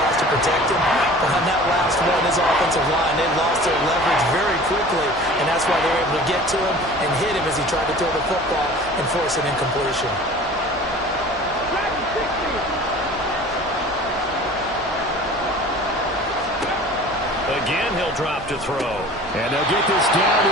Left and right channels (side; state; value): both; normal; correlation 0.43